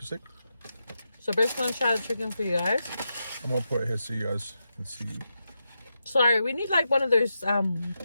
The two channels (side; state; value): both; inverted; correlation -0.87